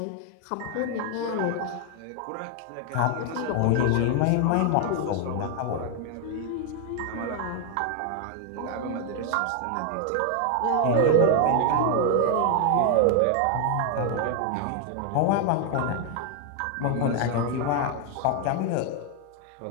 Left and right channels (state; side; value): different; both; correlation 0.00